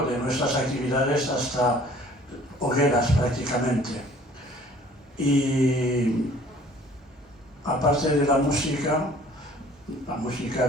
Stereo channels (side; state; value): both; normal; correlation 0.53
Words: de nuestras actividades hasta hogueras prácticamente. Y aparte de la música